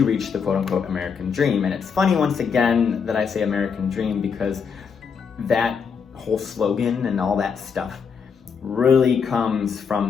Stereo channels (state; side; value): quieter; right; 6.2 dB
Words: reach the quote-unquote American dream. And it's funny, once again, that I say American dream, because that whole slogan and all that stuff really comes from